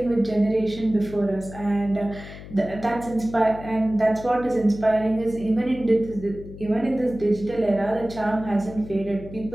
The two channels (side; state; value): left; noise; hum, 14 dB below the sound